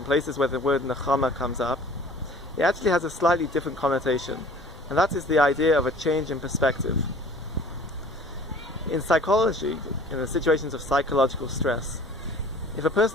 places where the word Nachamu comes up, it actually has a slightly different connotation. And that is the idea of a change in perspective. In psychology, in the situations of psychological stress, if a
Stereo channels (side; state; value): both; normal; correlation 0.48